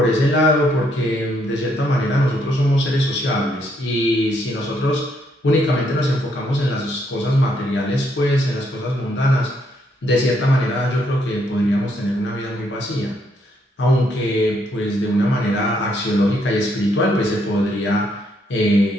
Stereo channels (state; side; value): normal; both; correlation 0.73